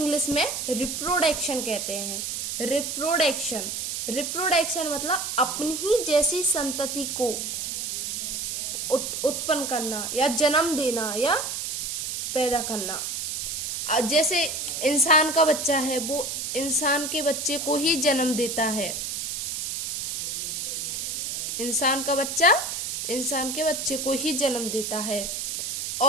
में रिप्रोडक्शन कहते हैं। रिप्रोडक्शन मतलब अपनी ही जैसी संतति को उत्पन्न करना या जन्म देना या पैदा करना। जैसे इंसान का बच्चा है, वो इंसान के बच्चे को ही जन्म देता है। इंसान का बच्चा इंसान के बच्चे को ही जन्म देता है।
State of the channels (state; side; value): noise; right; hiss, 3 dB below the sound